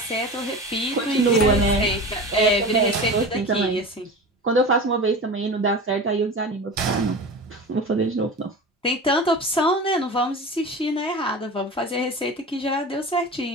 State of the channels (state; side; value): normal; both; correlation 0.31